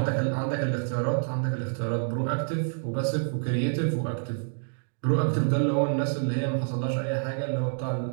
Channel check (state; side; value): silent; left; digital silence